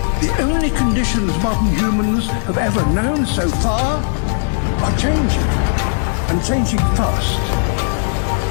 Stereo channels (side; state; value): right; silent; digital silence